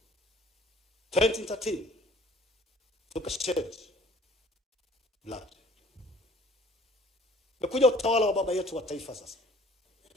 2013 tukashed blood. Mekuja utawala wa baba yetu wa taifa sasa.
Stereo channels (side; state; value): both; normal; correlation 0.53